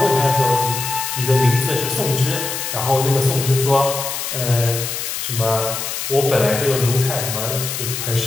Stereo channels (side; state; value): left; noise; hiss, 4 dB below the sound